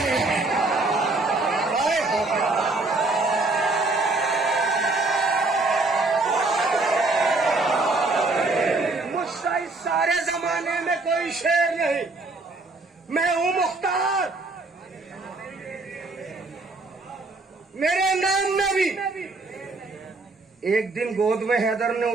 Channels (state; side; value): quieter; left; 3.3 dB